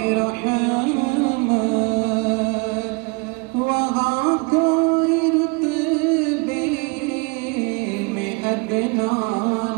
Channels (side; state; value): left; quieter; 29.6 dB